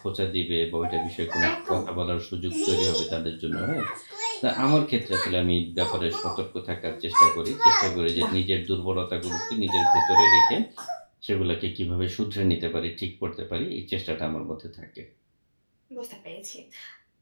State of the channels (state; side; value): inverted; both; correlation -1.00